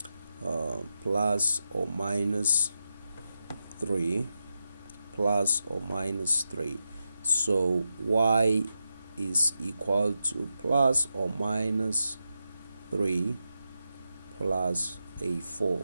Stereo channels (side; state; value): both; inverted; correlation -0.88